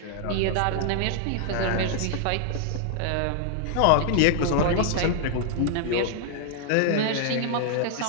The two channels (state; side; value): different; both; correlation -0.01